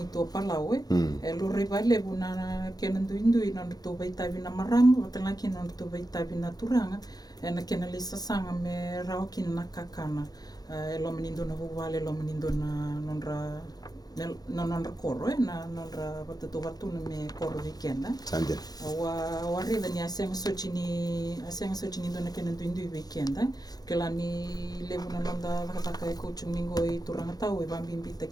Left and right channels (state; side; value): late; right; 0.19 ms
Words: to palau e lora vai levu na kena nduindui na to veitavi na marama vatanga kina na to veitavi na turanga e na kena le sasanga me rao kina na kakana e lo menindo na vuvale lo menindo na nonra koro na nonra watatu me koro weekend Sande. Wa reda ni asenga sochini ndo na kena nduindui weekend ke la ni levu na nonda vakataka e coaching mingo i turanga tau e vambimbi